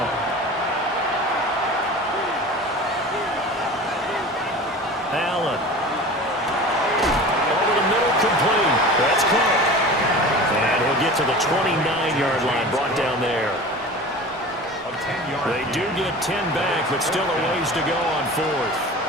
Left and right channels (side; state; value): both; normal; correlation 0.37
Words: Allen. Over the middle, complete. That's Cook. And he'll get to the 29-yard line, brought down there. They do get 10 back, but still a ways to go on 4th.